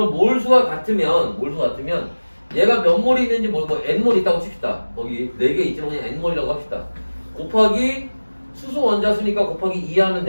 몰수가 같으면, 얘가 몇 몰이 있는지 모르고 n몰 있다고 칩시다. 거기 4개 있지만 그냥 n몰이라고 합시다. 곱하기 수소 원자수니까 곱하기 2 하면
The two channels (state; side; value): inverted; both; correlation -1.00